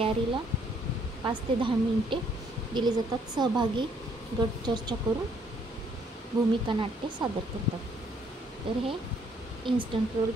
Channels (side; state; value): both; normal; correlation 0.66